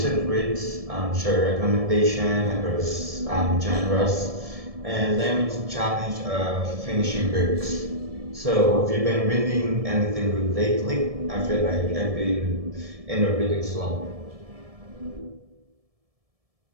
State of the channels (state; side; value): late; left; 1.7 ms